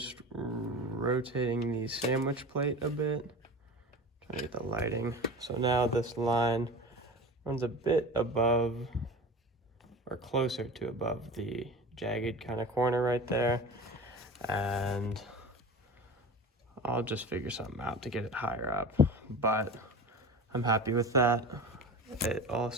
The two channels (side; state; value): both; normal; correlation 0.34